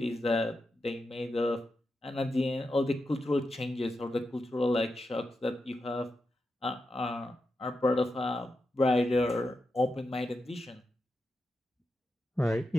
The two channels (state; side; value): normal; both; correlation 0.88